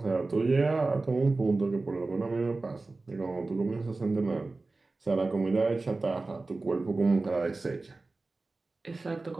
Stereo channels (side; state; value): left; quieter; 3.4 dB